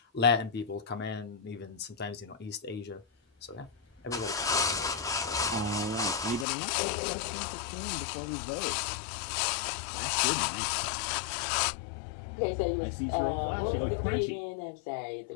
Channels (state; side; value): drops out; right; at 6.5 s